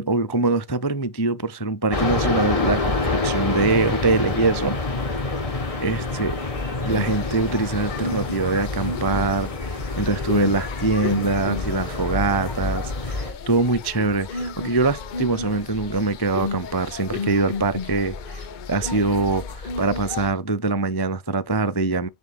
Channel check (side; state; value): right; late; 1.1 ms